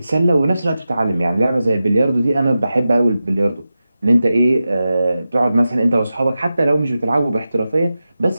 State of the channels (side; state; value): both; inverted; correlation -0.93